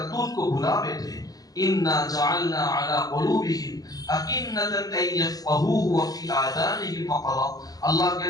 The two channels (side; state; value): right; late; 0.18 ms